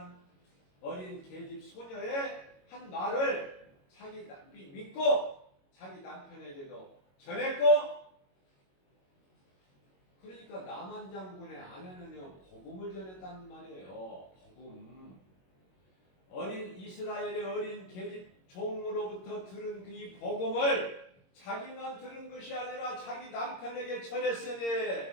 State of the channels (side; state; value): right; late; 22 ms